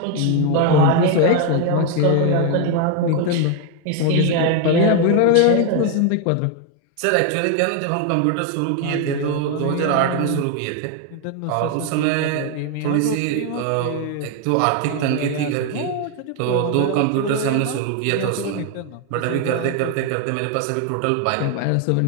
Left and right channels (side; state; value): both; different; correlation 0.01